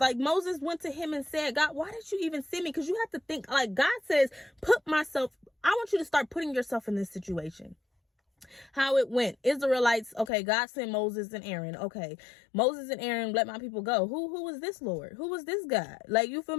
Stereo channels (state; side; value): drops out; right; at 10.3 s